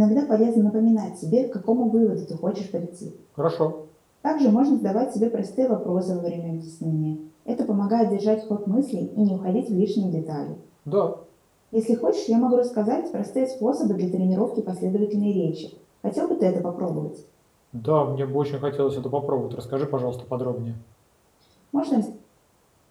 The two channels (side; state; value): both; identical; correlation 1.00